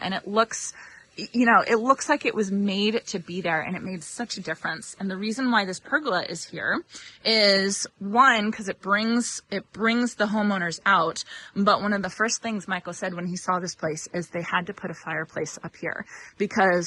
it looks, it looks like it was made to be there, and it made such a difference. And the reason why this pergola is here is, one, because it brings the homeowners out. But one of the first things Michael said when he saw this place is they had to put a fireplace up here,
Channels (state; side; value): identical; both; correlation 1.00